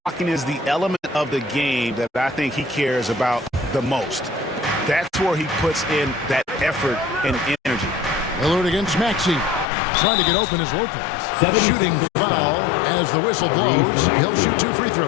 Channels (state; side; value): drops out; right; at 9.7 s